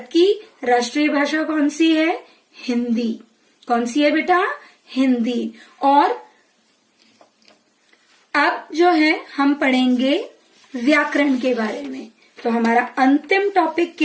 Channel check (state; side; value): identical; both; correlation 1.00